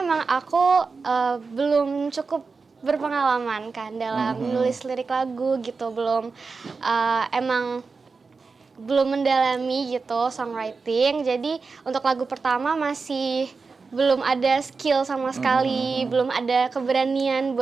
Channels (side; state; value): left; quieter; 4.5 dB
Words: aku belum cukup berpengalaman kan dalam menulis lirik lagu gitu, emang belum mendalami gitu songwriting. Jadi untuk lagu pertama masih belum ada skill sama sekali, belum ada keberanian